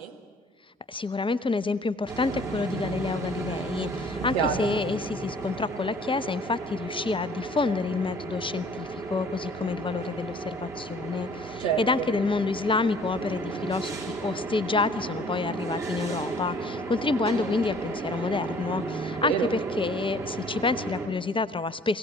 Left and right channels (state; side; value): normal; both; correlation 0.55